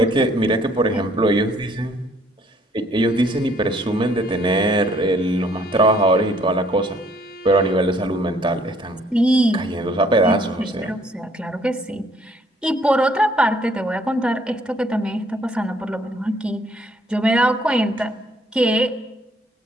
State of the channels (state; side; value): normal; both; correlation 0.63